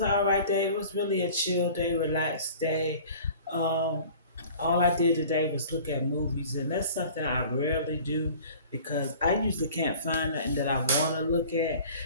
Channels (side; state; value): both; inverted; correlation -0.46